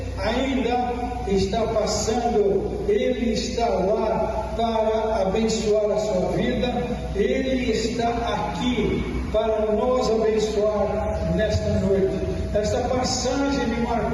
ainda está passando, Ele está lá para abençoar a sua vida. Ele está aqui para nos abençoar nesta noite. Esta passagem me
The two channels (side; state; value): both; identical; correlation 1.00